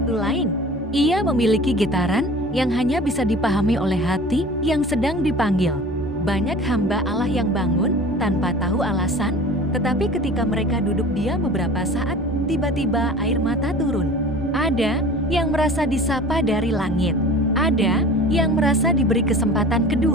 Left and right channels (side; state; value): both; normal; correlation 0.41